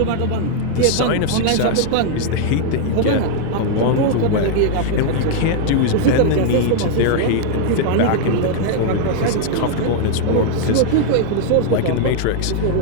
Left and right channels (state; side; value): different; both; correlation 0.00